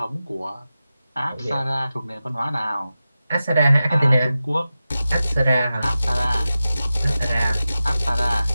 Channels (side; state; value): both; inverted; correlation -0.94